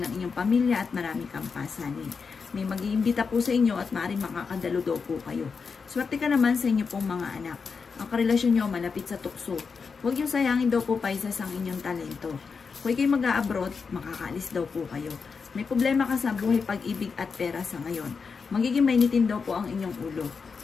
ng inyong pamilya at marami kang pasanin. May mag-iimbita po sa inyo at maaaring makakadalo daw po kayo. Swerte ka naman sa inyo pong mga anak. Ang karelasyon nyo malapit sa tukso. Huwag yung sayangin daw po, Pisces, ang inyong talento. Kung kayo mag-a-abroad, makakaalis daw po kayo. May problema ka sa buhay, pag-ibig at pera sa ngayon. Magiging mainitin daw po ang inyong ulo.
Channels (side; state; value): right; quieter; 5.3 dB